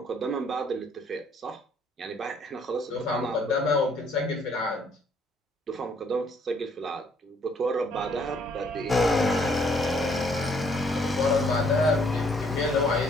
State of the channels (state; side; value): normal; both; correlation 0.65